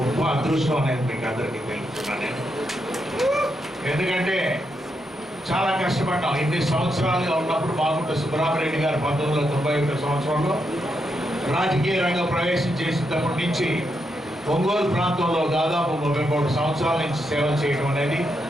అదృష్టం అనేది మీకు అందరికీ తెలుపుతున్నాను నేను. ఎందుకంటే చాలా కష్టపడ్డాం. ఇన్ని సంవత్సరాలుగా ఉన్నప్పుడు మాగుంట సుబ్బరామరెడ్డి గారు 1991 సంవత్సరంలో రాజకీయ రంగం ప్రవేశం చేసినప్పటి నుంచి ఒంగోలు ప్రాంతంలో దాదాపు 33 సంవత్సరాల నుంచి సేవ చేయడం అనేది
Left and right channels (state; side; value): normal; both; correlation 0.82